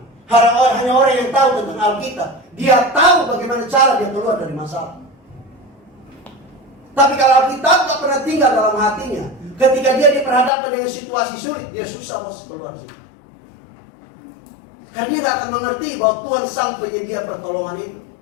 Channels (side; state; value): right; drops out; at 10.5 s